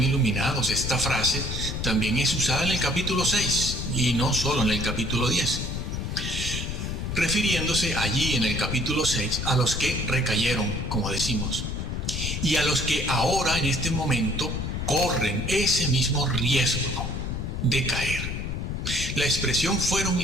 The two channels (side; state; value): left; noise; rumble, 3 dB below the sound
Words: Esta frase también es usada en el capítulo 6 y no solo en el capítulo 10. refiriéndose allí en el capítulo 6 a los que recayeron, como decimos. y a los que ahora en este momento corren ese mismo riesgo de caer. La expresión fueron